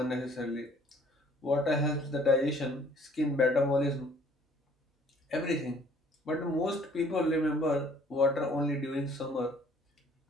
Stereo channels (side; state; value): both; normal; correlation 0.57